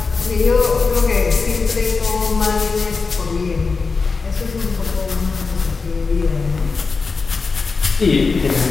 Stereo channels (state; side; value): quieter; right; 4.5 dB